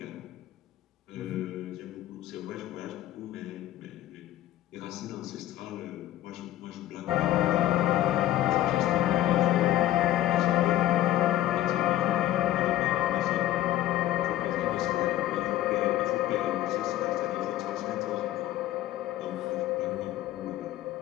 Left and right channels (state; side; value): quieter; right; 13.8 dB